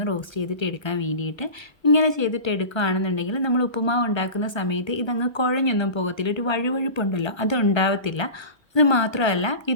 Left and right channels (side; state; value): right; late; 1.3 ms